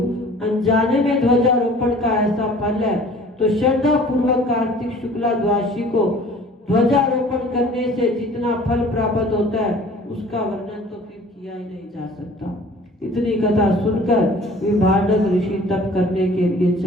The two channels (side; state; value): both; normal; correlation 0.49